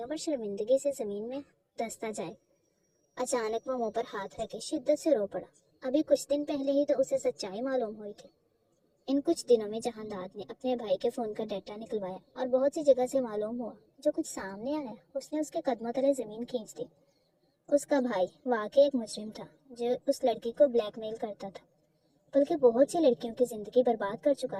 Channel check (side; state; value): both; identical; correlation 1.00